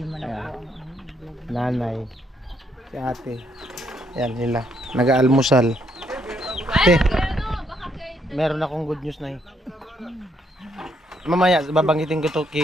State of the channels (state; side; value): normal; both; correlation 0.73